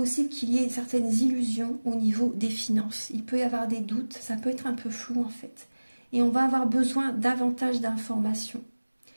qu'il y ait certaines illusions au niveau des finances. Il peut y avoir des doutes, ça peut être un peu flou en fait. Et on va avoir besoin davantage d'informations.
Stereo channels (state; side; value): inverted; both; correlation -1.00